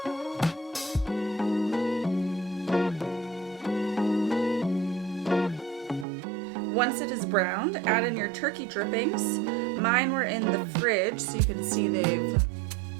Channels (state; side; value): drops out; left; at 6.1 s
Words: Once it is browned, add in your turkey drippings. Mine were in the fridge, so you can see they've